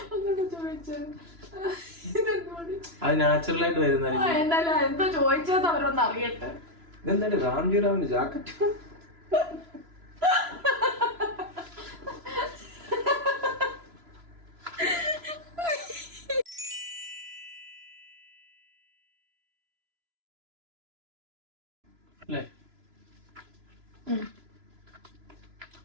ഒന്നുകൂടെ ചോദിച്ചു. അത് നാച്ചുറൽ ആയിട്ട് വരുന്ന എന്തായാലും എന്തോ ചോദിച്ചത് അവരൊന്ന് അറിയട്ടെ. ഇതെന്താണ് രാംജിറാവിന്റെ ജാക്കറ്റ്? അല്ലേ?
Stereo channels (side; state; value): left; late; 3.0 ms